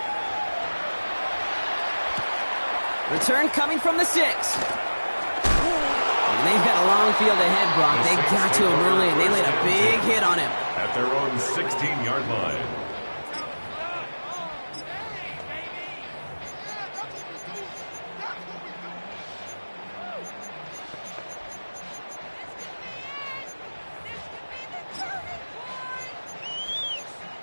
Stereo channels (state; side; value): inverted; both; correlation -1.00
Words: Return coming from the 6. And they've got a long field ahead, Brock. They got to him early, and they laid a big hit on him. At their own 16-yard line.